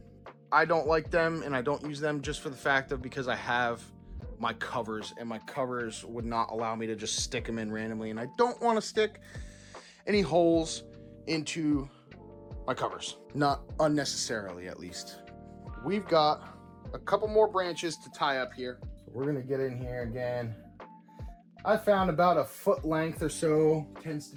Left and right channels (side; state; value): both; identical; correlation 1.00